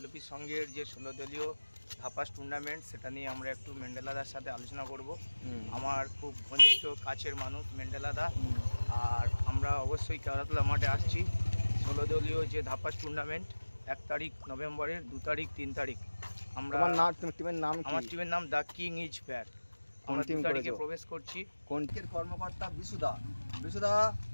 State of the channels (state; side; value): inverted; both; correlation -1.00